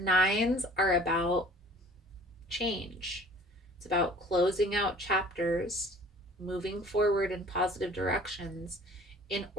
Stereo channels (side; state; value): both; normal; correlation 0.50